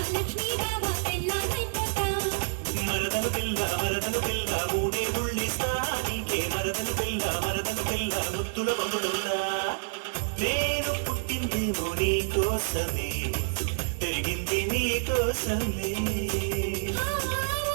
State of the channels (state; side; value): silent; left; digital silence